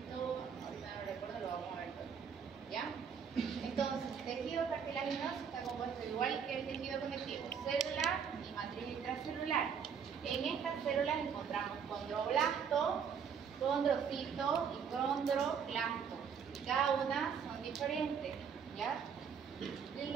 ahorita no recuerdo, lo vamos a ver todo. ¿Ya? Entonces, el tejido cartilaginoso está compuesto igual que el tejido conectivo, celular y matriz intracelular. En estas células encontramos condroblasto, condrocito y condroclasto. Cada una son diferentes, ¿ya? Y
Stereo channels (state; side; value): quieter; left; 6.9 dB